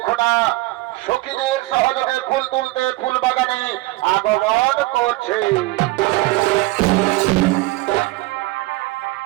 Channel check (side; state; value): left; quieter; 19.9 dB